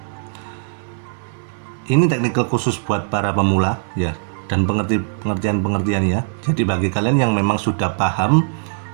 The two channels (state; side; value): silent; left; 63 dB below the other